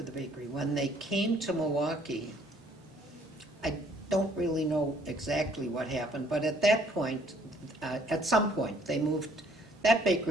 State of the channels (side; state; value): both; normal; correlation 0.61